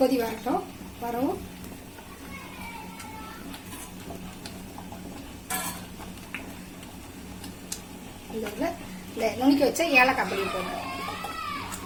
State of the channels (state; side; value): identical; both; correlation 1.00